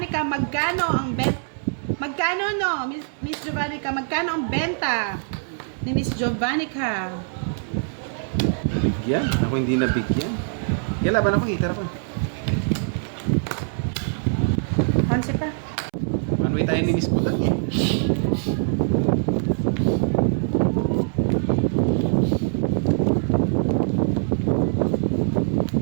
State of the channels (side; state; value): left; silent; 63 dB below the other